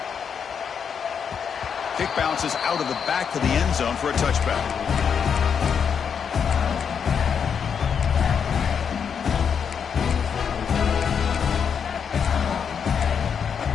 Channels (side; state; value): right; quieter; 7.0 dB